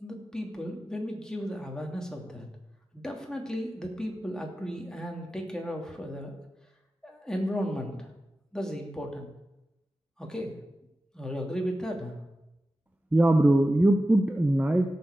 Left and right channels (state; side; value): normal; both; correlation 0.94